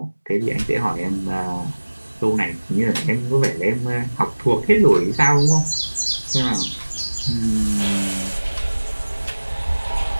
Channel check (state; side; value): inverted; both; correlation -1.00